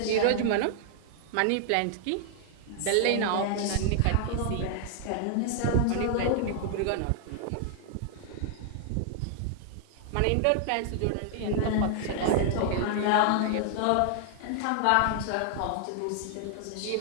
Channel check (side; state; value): both; different; correlation 0.00